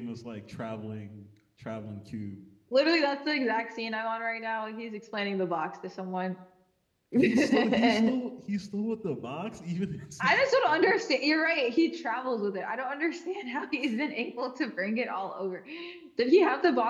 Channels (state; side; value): identical; both; correlation 1.00